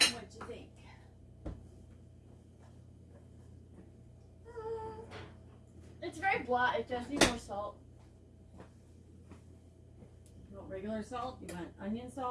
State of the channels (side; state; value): both; identical; correlation 1.00